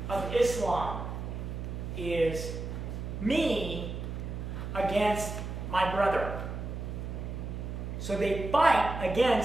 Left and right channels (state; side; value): noise; right; hum, 6 dB below the sound